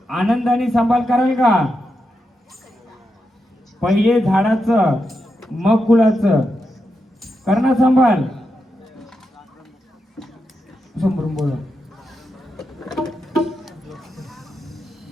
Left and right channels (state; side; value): normal; both; correlation 0.86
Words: आनंदाने सांभाळ कराल का? पहिले झाडाचं मग फुलाचं करणार सांभाळ. समोरून बोला.